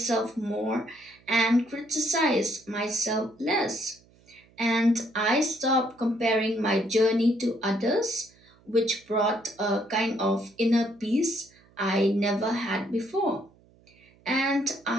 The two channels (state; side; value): noise; right; hum, 30 dB below the sound